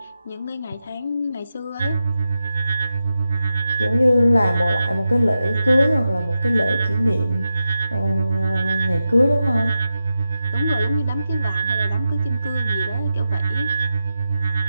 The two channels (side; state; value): both; inverted; correlation -0.90